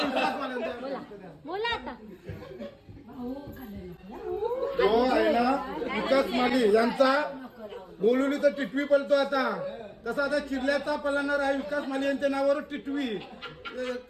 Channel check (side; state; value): both; identical; correlation 1.00